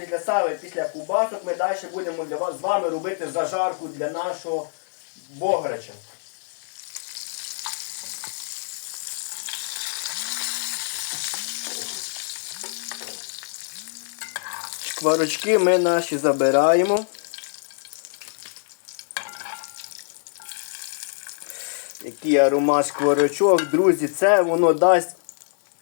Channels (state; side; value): silent; right; digital silence